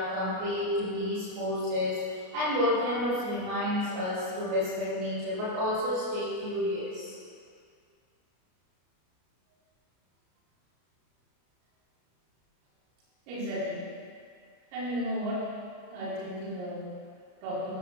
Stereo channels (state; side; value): late; left; 33 ms